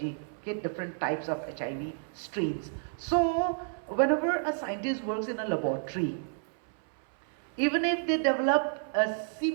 okay? Different types of HIV strains. So whenever a scientist works in a laboratory, even if they develop a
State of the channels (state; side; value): silent; left; 57 dB below the other